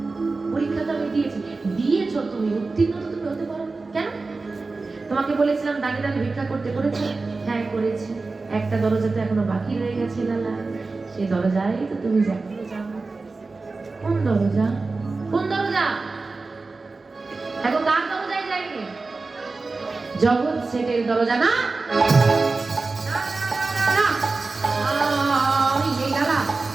পরীক্ষা তো আমি দিয়েছি। দিয়েছো তুমি, উত্তীর্ণ তো তুমি হতে পারো কেন? তোমাকে বলেছিলাম দাঁড়িয়ে দাঁড়িয়ে ভিক্ষা করতে, করেছো? হ্যাঁ করেছি। একটা দরজা তো এখনো বাকি রয়ে গেছে লালা, সেই দরজায় তো তুমি যাও। কোন দরজা? কোন দরজা? এখন কার দরজায় যাইনি? জগৎ সেটের দরজা না? না, এই লালা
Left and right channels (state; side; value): quieter; left; 3.8 dB